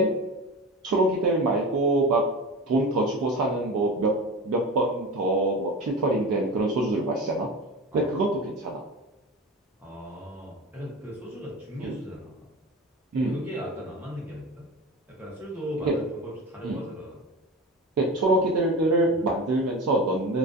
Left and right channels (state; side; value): normal; both; correlation 0.29